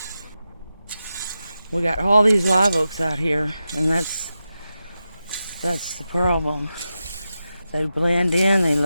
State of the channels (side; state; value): both; inverted; correlation -0.91